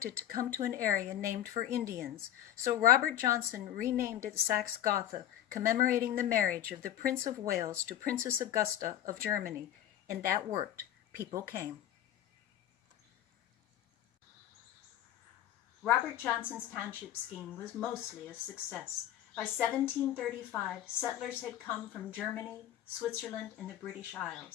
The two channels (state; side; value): quieter; right; 11.8 dB